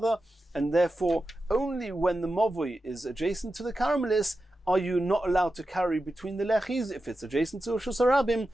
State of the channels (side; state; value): both; normal; correlation 0.91